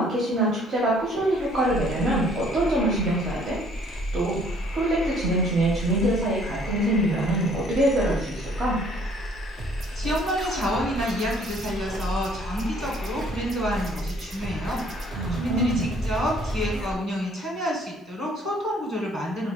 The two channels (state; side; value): normal; both; correlation 0.60